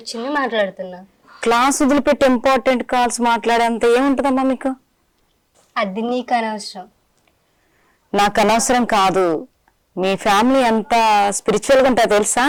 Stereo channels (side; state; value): both; identical; correlation 1.00